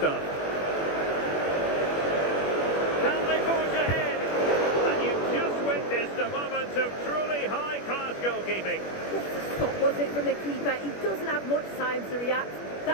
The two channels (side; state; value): right; late; 21 ms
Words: Can they forge ahead? And you've just witnessed a moment of truly high-class goalkeeping. What a stop was it from the keeper? He doesn't have much time to react.